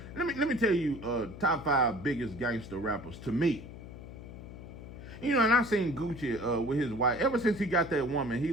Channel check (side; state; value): left; noise; hum, 13 dB below the sound